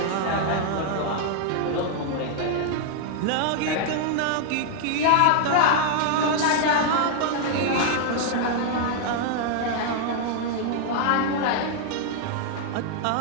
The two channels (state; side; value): different; both; correlation 0.00